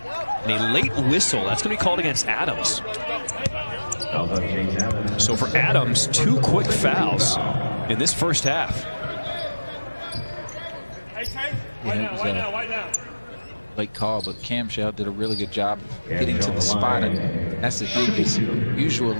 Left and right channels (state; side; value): inverted; both; correlation -1.00